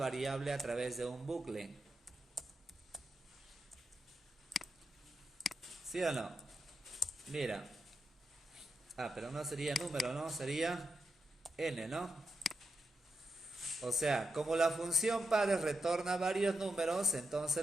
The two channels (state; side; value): normal; both; correlation 0.86